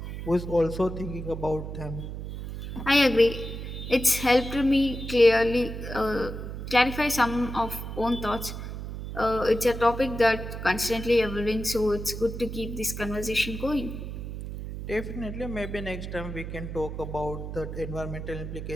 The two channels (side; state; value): right; noise; hum, 7 dB below the sound